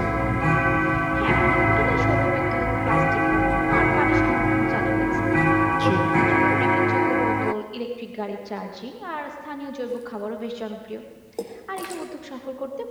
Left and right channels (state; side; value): identical; both; correlation 1.00